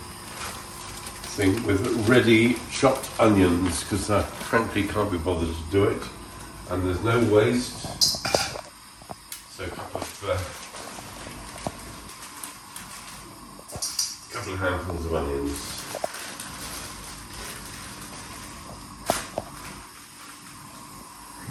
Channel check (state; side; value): identical; both; correlation 1.00